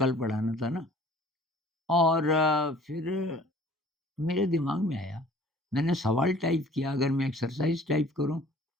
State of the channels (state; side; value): normal; both; correlation 0.50